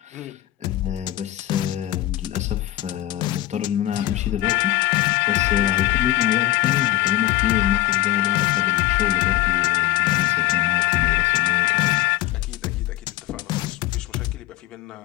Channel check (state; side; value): quieter; right; 15.7 dB